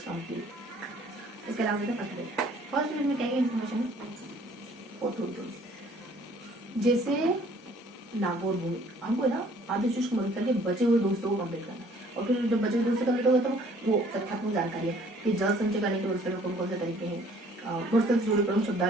कंप्लीट। इसके अलावा फर्स्ट पेज, फर्स्ट पेज में क्या क्या इन्फॉर्मेशन और थोड़ी थोड़ी, जैसे नागौर भूमि हमको ना आदिशिष्ट को मदद करके बचे हुए दोस्तों को कंप्लीट करना है, और फिर जब बचे हुए दोस्तों कंप्लीट हो गए तो वो तथ्यात्मक जानकारी है कि जल संचय करने के वर्षल में कौन कौन से तरीके हैं, वर्षल से जुड़े प्रमुख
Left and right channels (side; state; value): both; normal; correlation 0.57